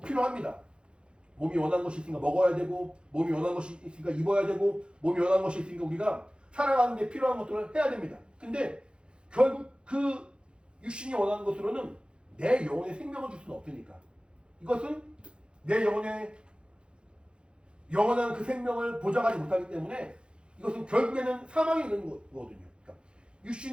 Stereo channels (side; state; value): left; late; 0.054 ms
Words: 필요합니다. 몸이 원하는 것이 있으니까 먹어야 되고 몸이 원하는 것이 있으니까 입어야 되고 몸이 원하는 것이 있으니까 우리가 살아가는 데 필요한 것들을 해야 됩니다. 근데 결국 그 육신이 원하는 것으로는 내 영혼에 생명을 줄 수는 없으니까 이것은 내 영혼에 영원한 그 생명을 보장하지 못하기 때문에 이것은 결국에는 사망에 이르는 거거든요. 그러니까